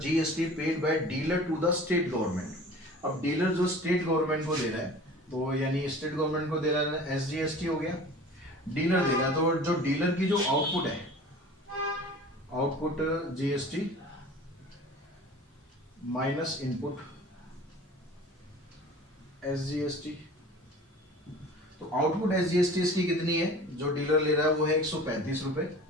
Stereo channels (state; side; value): normal; both; correlation 0.42